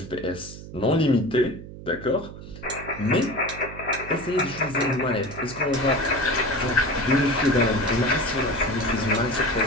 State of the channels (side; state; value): right; noise; hum, 14 dB below the sound